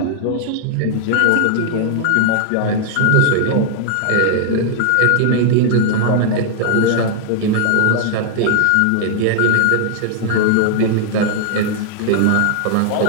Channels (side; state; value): both; different; correlation 0.00